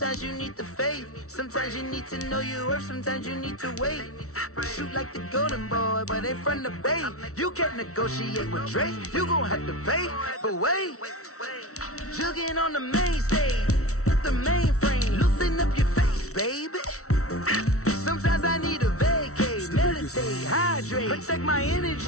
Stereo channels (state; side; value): late; right; 0.64 ms